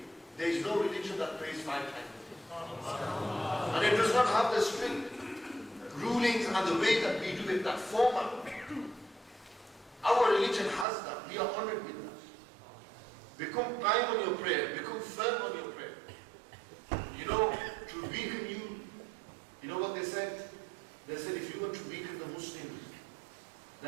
There is no religion that prays 5 times a day. And it does not have the strict rulings and the way that we do it, that format. Our religion has that. We are honored with that. Become prime on your prayer. Become firm on your prayer. You know, to weaken you, you know what they said? They said if you want to weaken the Muslims,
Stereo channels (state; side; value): drops out; left; at 10.9 s